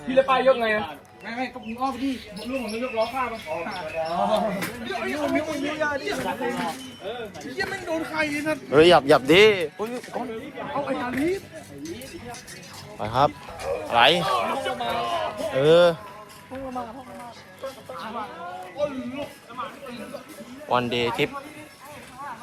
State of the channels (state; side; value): identical; both; correlation 1.00